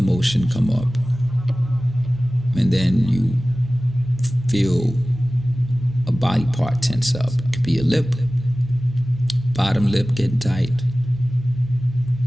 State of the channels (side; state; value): both; normal; correlation 0.97